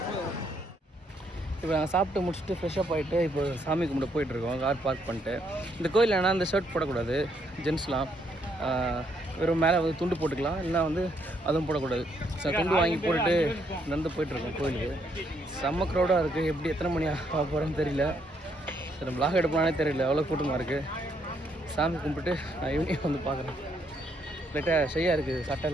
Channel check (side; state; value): both; normal; correlation 0.73